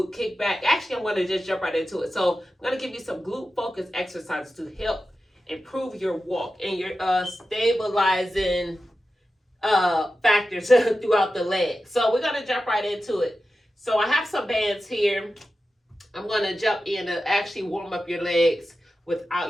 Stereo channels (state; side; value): normal; both; correlation 0.92